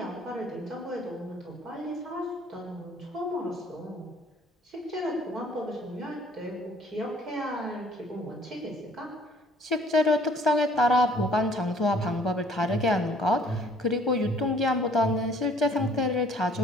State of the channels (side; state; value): both; normal; correlation 0.58